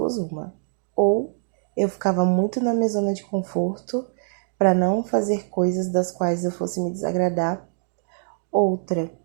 uma. Ou eu ficava muito na minha zona de conforto para não fazer coisas das quais eu fosse me desagradar. Outra,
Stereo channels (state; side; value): silent; left; digital silence